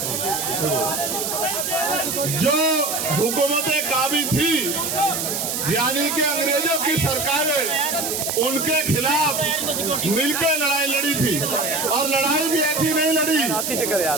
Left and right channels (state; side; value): noise; right; hiss, 2 dB below the sound